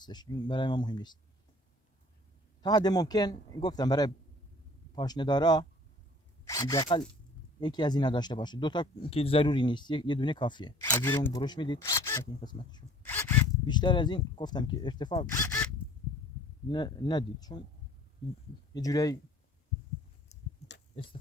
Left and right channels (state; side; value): normal; both; correlation 0.51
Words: این برای ما مهم نیست. تا حد ممکن گفتم برای پاشنه دارا حداقل یکی از اینا داشته باشه، 2 تا که ضروری نیست، یه دونه کافیه. از زیر اون برش میدید این قسمتشون. بیشتر از این گفتم که ارتفاع ندید، چون یه جوری